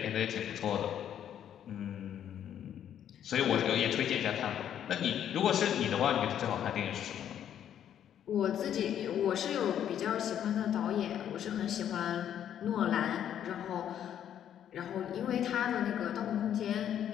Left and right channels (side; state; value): right; quieter; 9.9 dB